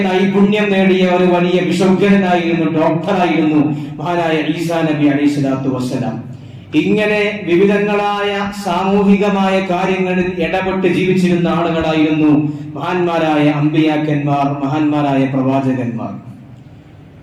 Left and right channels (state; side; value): identical; both; correlation 1.00